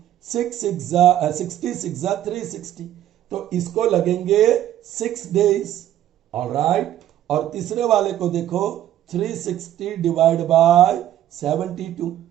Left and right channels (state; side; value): quieter; left; 12.2 dB